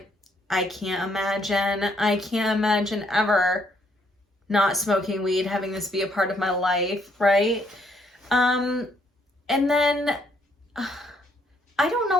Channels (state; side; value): normal; both; correlation 0.69